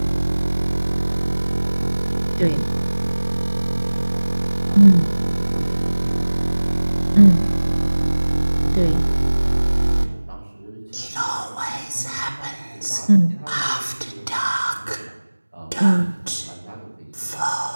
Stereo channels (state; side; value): inverted; both; correlation -1.00